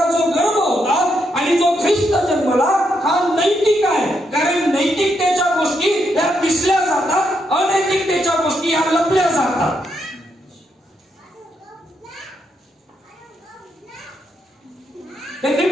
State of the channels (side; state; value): both; normal; correlation 0.79